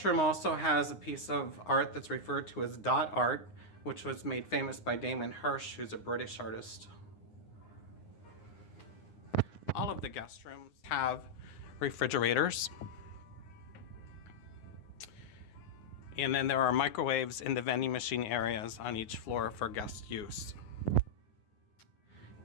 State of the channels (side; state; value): right; late; 9.7 ms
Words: room also has a piece of art that's referred to as dot art, which was made famous by Damon Hirst, who's a British artist. All of the guest rooms have refrigerators. And then there are microwaves in the vending machine areas on each floor for guest use.